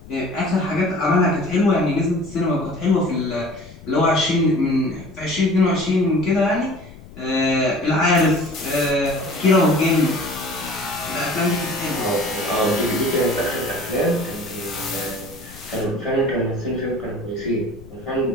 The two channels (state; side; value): noise; left; rumble, 19 dB below the sound